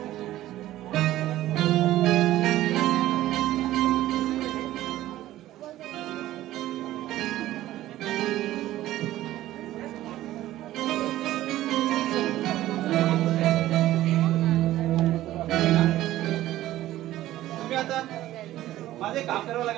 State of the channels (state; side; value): quieter; left; 14.7 dB